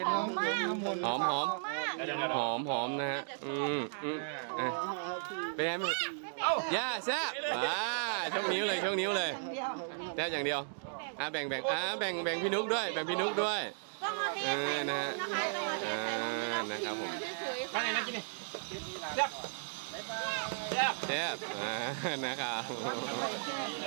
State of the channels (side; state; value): left; silent; digital silence